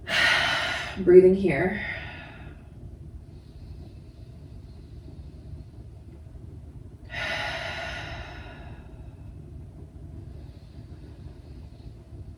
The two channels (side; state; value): both; identical; correlation 1.00